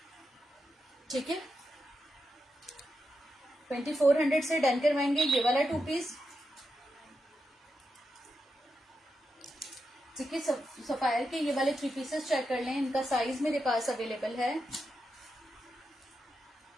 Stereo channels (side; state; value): both; normal; correlation 0.86